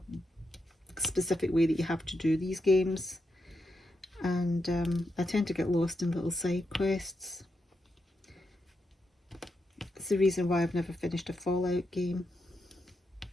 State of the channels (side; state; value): both; normal; correlation 0.85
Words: specific way that you have to do these games. And I tend to get lost in little side quests. It's the reason why I've never finished a Fallout game.